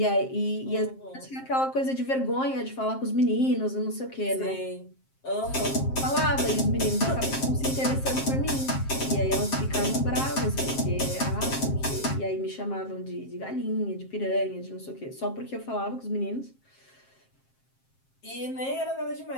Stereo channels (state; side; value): late; right; 7.5 ms